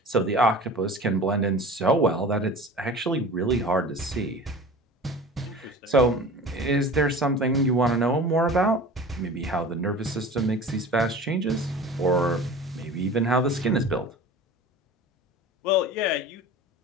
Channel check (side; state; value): both; normal; correlation 0.38